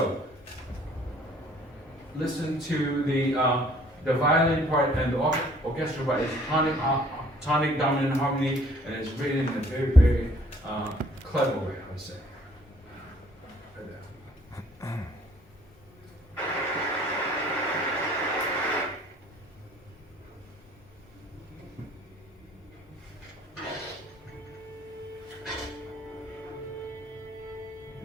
listen to the violin part and the orchestra part is tonic dominant harmony, and it's written in a very, very clever way, I would say.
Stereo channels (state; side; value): normal; both; correlation 0.58